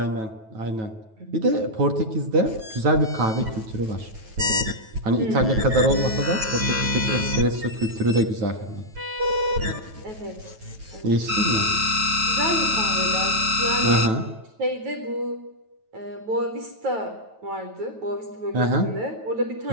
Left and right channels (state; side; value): late; left; 9.2 ms